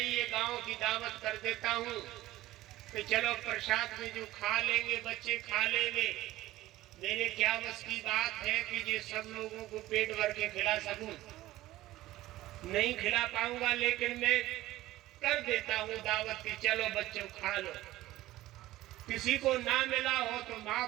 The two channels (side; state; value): left; quieter; 16.2 dB